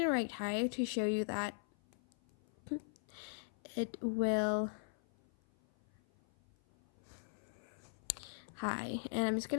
write hi to show you that it will hi, and I'm just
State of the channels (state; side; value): silent; right; 51 dB below the other